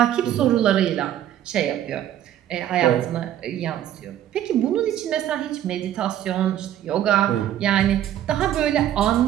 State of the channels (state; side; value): quieter; left; 11.5 dB